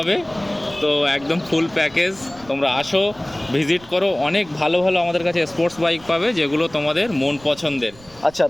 তো একদম ফুল প্যাকেজ, তোমরা আসো, ভিজিট করো। অনেক ভালো ভালো আমাদের কাছে স্পোর্টস বাইক পাবে, যেগুলো তোমাদের মন পছন্দের। আচ্ছা,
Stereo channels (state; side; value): noise; right; rumble, 23 dB below the sound